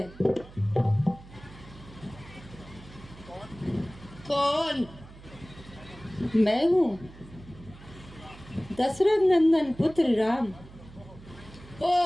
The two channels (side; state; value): right; noise; hum, 19 dB below the sound